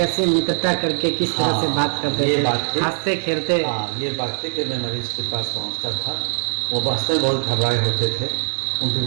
मित्रता करके किस तरह से बात करते थे, हंसते खेलते? ये बात थी कि मैं मरीज के पास पहुंचता था, वो वास्तव में बहुत घबराए होते थे, उनके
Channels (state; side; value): silent; left; 65 dB below the other